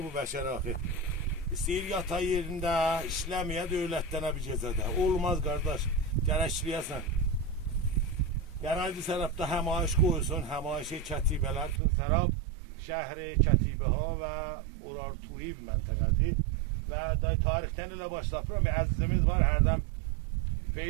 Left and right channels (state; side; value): drops out; left; at 11.8 s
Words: bu bəşər axı. İstəyir yatay yerində, işləməyə dövlətdənə bir gecədə. Olmaz qardaş, gərəkliyəsən. Gərəkli sərabda həmayiş qoyulsun, həmayişi kətibələr üçün sərab şəhri Kətibəha və Urartuli məntəqədir. Və tarixdən ilə başlayıram və əzizimiz var, hərdən